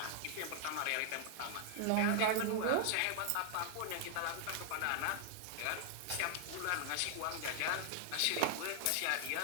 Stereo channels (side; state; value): both; different; correlation 0.00